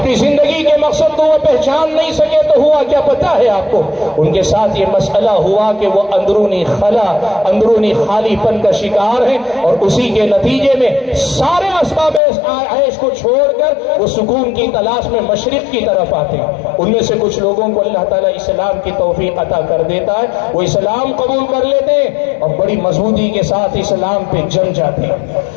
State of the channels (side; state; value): right; drops out; at 12.2 s